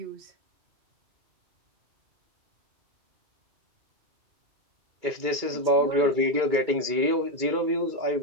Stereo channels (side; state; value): left; late; 2.3 ms